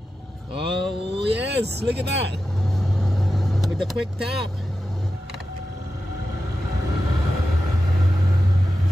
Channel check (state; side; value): normal; both; correlation 0.91